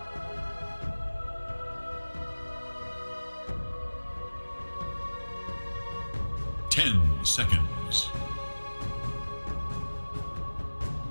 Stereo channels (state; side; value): inverted; both; correlation -1.00